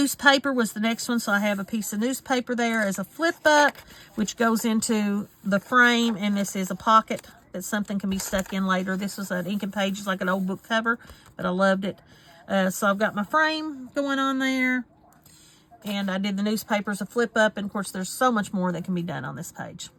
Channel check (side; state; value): both; identical; correlation 1.00